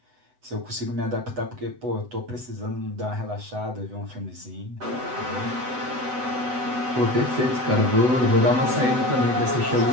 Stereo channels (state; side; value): late; left; 8.0 ms